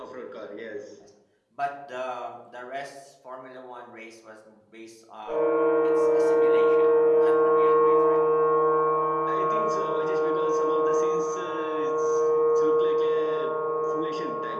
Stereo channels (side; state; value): both; identical; correlation 1.00